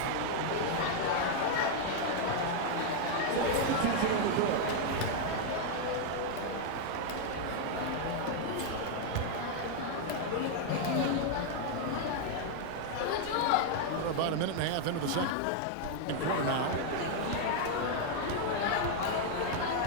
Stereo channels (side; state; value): both; different; correlation 0.00